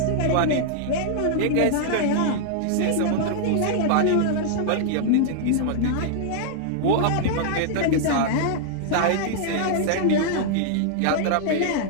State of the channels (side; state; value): both; different; correlation -0.01